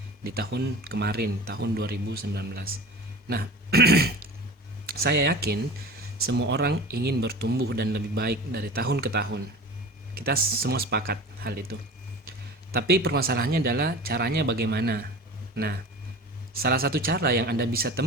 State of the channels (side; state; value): both; normal; correlation 0.36